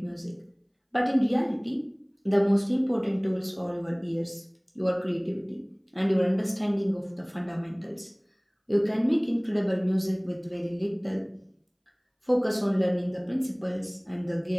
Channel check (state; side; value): identical; both; correlation 1.00